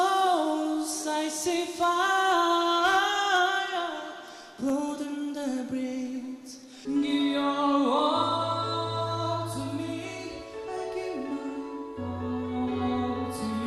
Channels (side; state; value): both; identical; correlation 1.00